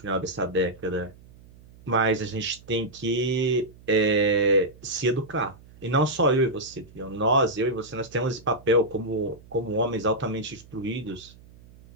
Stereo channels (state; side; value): noise; right; hum, 23 dB below the sound